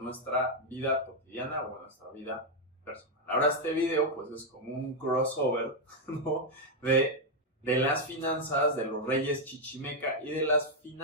nuestra vida cotidiana o en nuestra vida personal. Ahora este video pues es como un crossover, ¿no? de las finanzas de los reyes chichimeca y de las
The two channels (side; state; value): both; normal; correlation 0.01